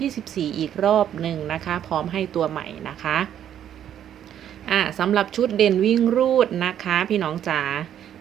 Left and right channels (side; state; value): left; quieter; 10.1 dB